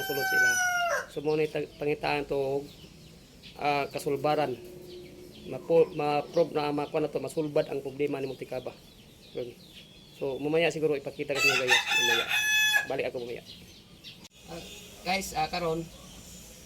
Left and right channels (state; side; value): identical; both; correlation 1.00